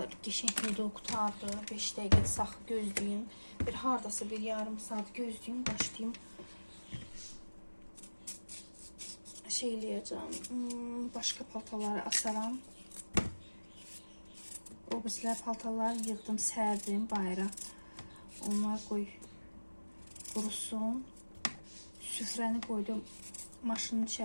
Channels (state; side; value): inverted; both; correlation -1.00